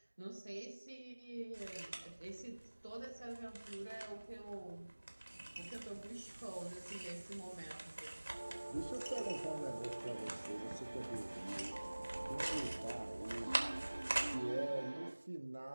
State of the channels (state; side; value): inverted; both; correlation -1.00